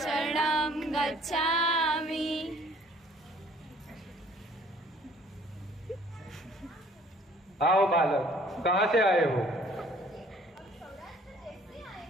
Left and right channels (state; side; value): normal; both; correlation 0.56